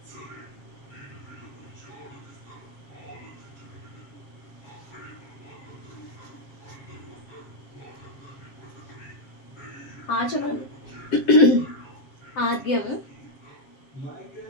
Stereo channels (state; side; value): late; right; 7.3 ms